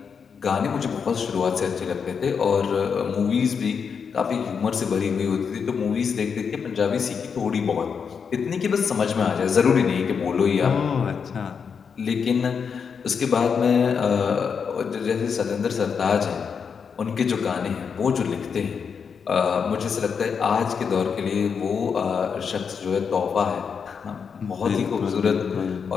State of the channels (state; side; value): quieter; right; 6.3 dB